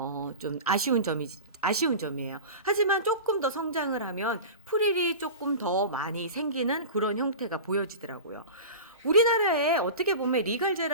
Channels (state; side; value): inverted; both; correlation -0.31